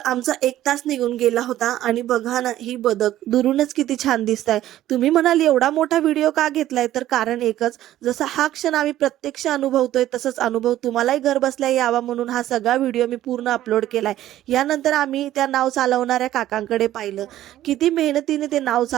आमचा 1 तास निघून गेला होता आणि बघा ना, ही बदक दुरूनच किती छान दिसताय. तुम्ही म्हणाल एवढा मोठा व्हिडिओ का घेतलाय? तर कारण एकच, जसा हा क्षण आम्ही प्रत्यक्ष अनुभवतोय, तसंच अनुभव तुम्हालाही घरबसल्या यावा म्हणून हा सगळा व्हिडिओ मी पूर्ण अपलोड केलाय. यानंतर आम्ही त्या नाव चालवणाऱ्या काकांकडे पाहिलं. किती मेहनतीने ते नाव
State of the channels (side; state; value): left; quieter; 13.5 dB